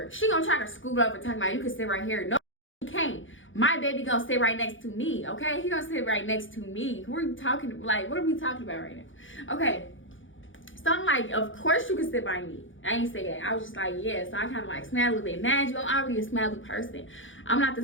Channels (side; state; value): right; late; 0.56 ms